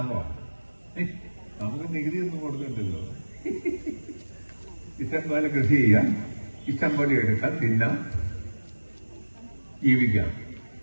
നമുക്ക് നികുതി ഒന്നും കൊടുക്കണ്ടല്ലോ. ഇഷ്ടം പോലെ കൃഷി ചെയ്യാം, ഇഷ്ടം പോലെ എടുക്കാം, തിന്നാം, ജീവിക്കാം.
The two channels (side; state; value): both; inverted; correlation -1.00